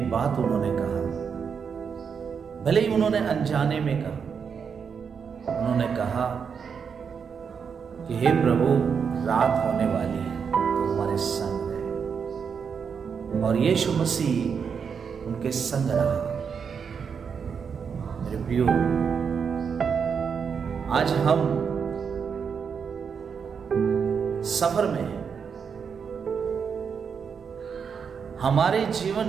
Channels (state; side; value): quieter; left; 6.5 dB